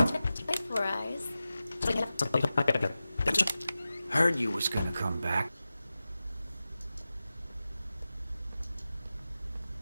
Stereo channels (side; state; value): both; inverted; correlation -0.94